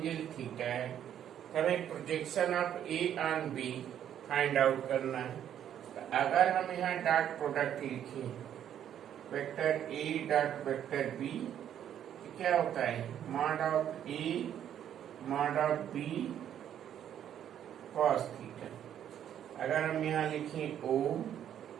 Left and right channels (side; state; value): left; quieter; 10.0 dB